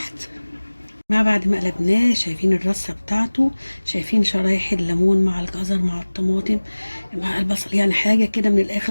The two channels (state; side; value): inverted; both; correlation -1.00